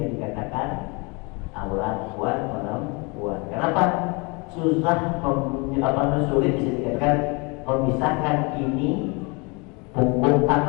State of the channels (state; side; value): quieter; right; 29.5 dB